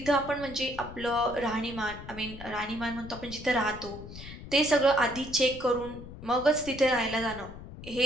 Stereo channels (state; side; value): noise; left; rumble, 13 dB below the sound